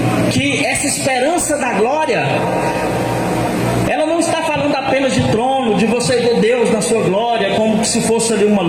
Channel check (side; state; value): both; identical; correlation 1.00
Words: que essa esperança da glória, ela não está falando apenas de trono, de você ver Deus na sua glória, como se fosse ali uma